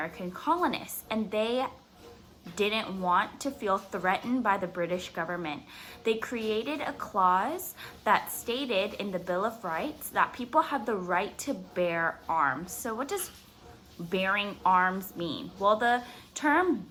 colonists, and they didn't want to feel threatened by the British government. They created a clause that stated in the Bill of Rights that people have the right to bear arms. So what does bearing arms mean? Well, the term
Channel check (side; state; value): both; identical; correlation 1.00